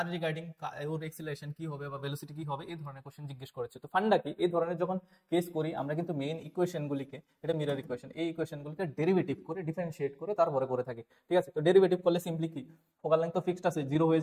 রিগার্ডিং ওর অ্যাক্সেলারেশন কি হবে বা ভেলোসিটি কি হবে এই ধরনের কোশ্চেন জিজ্ঞেস করেছে। তো ফান্ডা কি, এই ধরনের যখন কেস করি আমরা কিন্তু মেইন ইকুয়েশনগুলিকে, এটা মিরর ইকুয়েশন, এই ইকুয়েশনগুলিকে ডেরিভেটিভ করে ডিফারেন্সিয়েট করে তারপরে করে থাকি, ঠিক আছে। তো ডেরিভেটিভ করলে সিম্পলি কি ফোকাল লেন্থ তো ফিক্সড আছে, জিরো হয়ে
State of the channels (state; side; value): identical; both; correlation 1.00